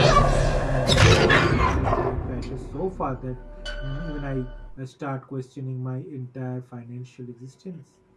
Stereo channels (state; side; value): identical; both; correlation 1.00